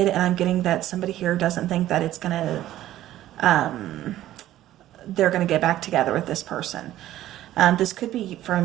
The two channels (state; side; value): quieter; left; 13.6 dB